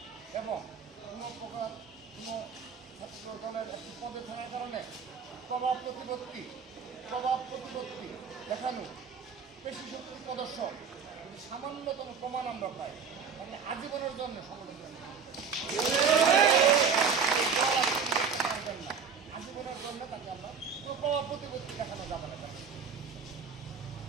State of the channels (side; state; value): left; quieter; 6.0 dB